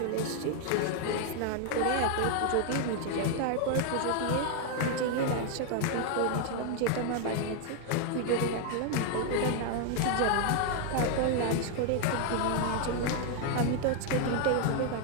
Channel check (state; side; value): different; both; correlation 0.00